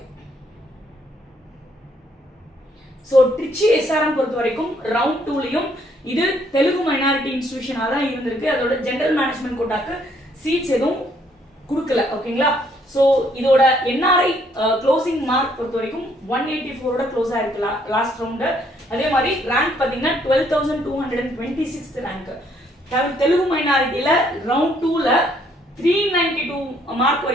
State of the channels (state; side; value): normal; both; correlation 0.68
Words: சோ ட்ரிச்சி எஸ்ஆர்எம் பொறுத்த வரைக்கும் ரவுண்ட் 2லயும் இது தெலுங்கு மைனாரிட்டி இன்ஸ்டிடியூஷனா தான் இருந்திருக்கு. அதோட ஜெனரல் மேனேஜ்மெண்ட் கோட்டாக்கு சீட்ஸ் எதுவும் கொடுக்கல. ஓகேங்களா? சோ இதோட என்ஆர்ஐ க்ளோசிங் மார்க் பொறுத்த வரைக்கும் 184ஓட க்ளோஸ் ஆயிருக்கு லாஸ்ட் ரவுண்ட். அதே மாதிரி ரேங்க் பாத்தீங்கன்னா 12,226 ரேங்க். தெலுங்கு மைனாரிட்டில ரவுண்ட் 2ல 392 மார்க்